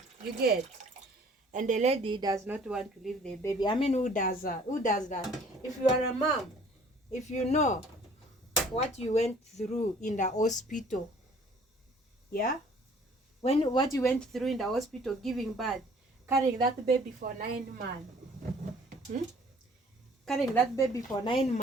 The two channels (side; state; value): both; normal; correlation 0.54